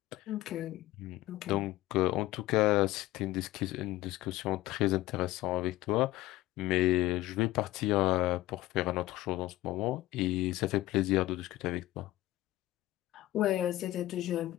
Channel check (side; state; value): right; quieter; 16.5 dB